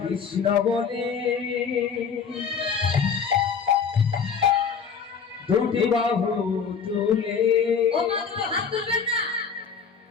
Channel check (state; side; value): quieter; right; 6.3 dB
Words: বলে দুটি বাহু তুলে ও মা দুটো হাত তুলবেন না